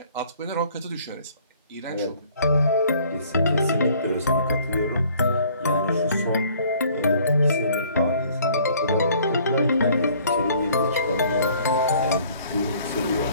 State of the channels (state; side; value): inverted; both; correlation -0.57